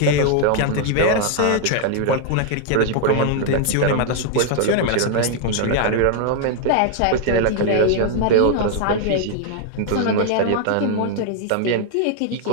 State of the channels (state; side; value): different; both; correlation 0.00